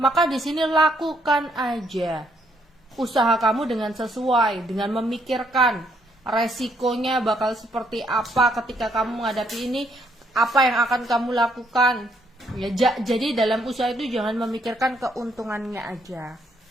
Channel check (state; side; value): normal; both; correlation 0.71